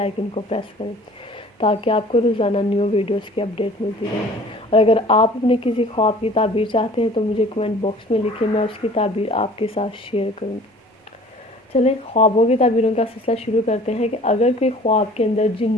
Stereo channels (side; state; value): both; normal; correlation 0.49